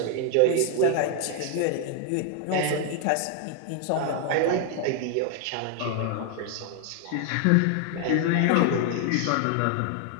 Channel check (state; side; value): different; both; correlation 0.00